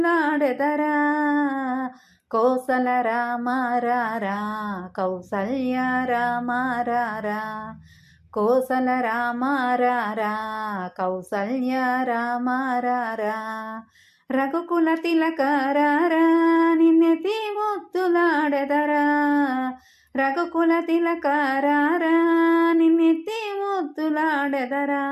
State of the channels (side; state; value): both; identical; correlation 1.00